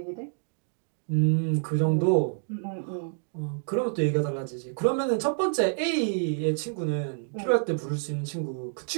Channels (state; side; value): silent; left; digital silence